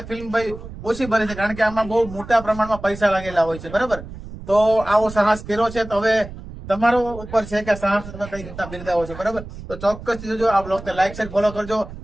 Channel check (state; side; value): noise; right; rumble, 13 dB below the sound